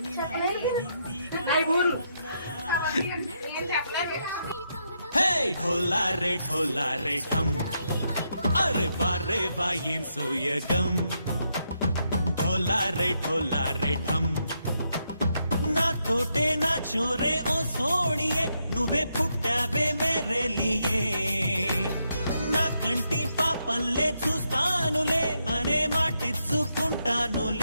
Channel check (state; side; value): inverted; both; correlation -0.80